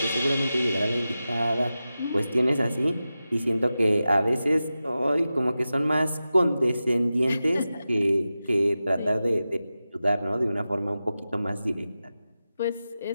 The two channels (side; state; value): both; inverted; correlation -0.94